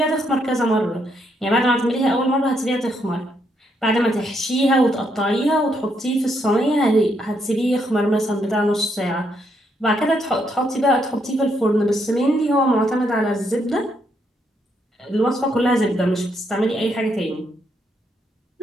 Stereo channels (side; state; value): both; normal; correlation 0.76